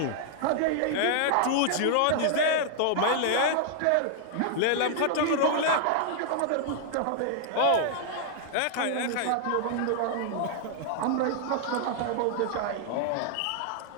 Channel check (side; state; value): both; different; correlation -0.01